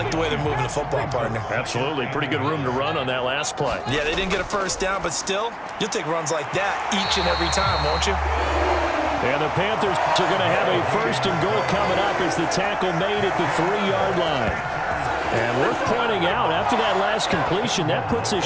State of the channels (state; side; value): identical; both; correlation 1.00